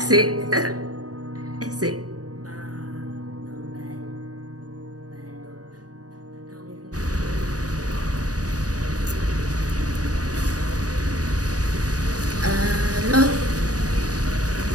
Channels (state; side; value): late; left; 0.68 ms